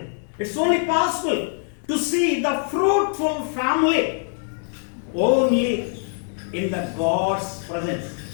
It's only possible to see the fruitful family only in the God's presence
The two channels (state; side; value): silent; right; 59 dB below the other